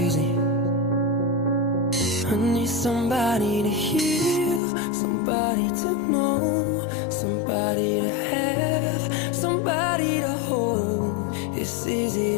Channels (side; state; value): right; drops out; at 4.6 s